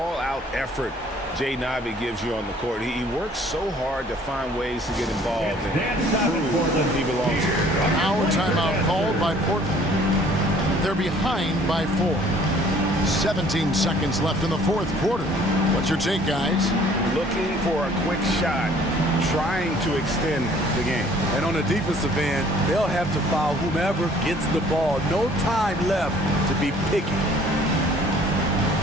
effort Jaden Ivey gives you on the court. He works so hard to find ways to get involved and prove he belongs here. Now a timeout called by Portland. They're behind by 4. 17 seconds left in the fourth quarter. What's your take, guys? Looking for a quick shot, trying to extend the game. And on the defensive end, they'll have to foul whomever gets the ball. No time left to be picky.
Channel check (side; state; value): both; normal; correlation 0.56